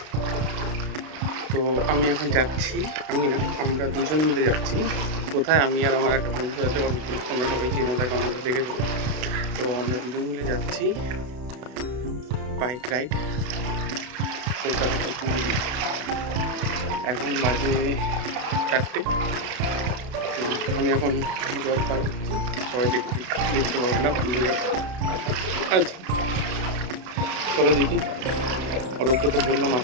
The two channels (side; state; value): left; late; 32 ms